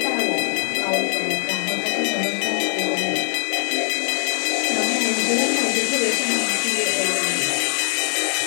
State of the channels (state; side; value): silent; right; digital silence